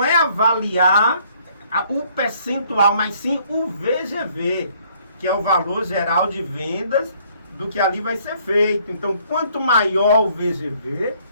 é avaliar o percentual, mas sim o VGV, que é o valor geral de vendas do que ali vai ser feito. Então, quanto maior o VGV,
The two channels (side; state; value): both; inverted; correlation -0.63